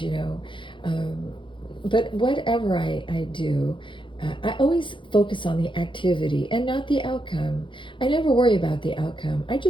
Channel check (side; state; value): right; late; 0.24 ms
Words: but whatever I do, I always focus on the activity and not the outcome. I never worry about the outcome. I